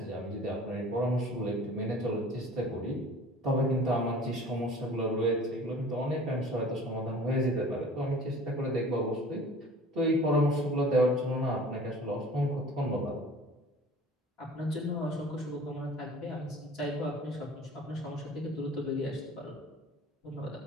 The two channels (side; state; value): both; normal; correlation 0.45